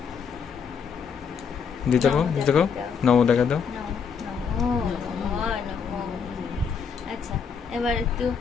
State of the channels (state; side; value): quieter; right; 6.3 dB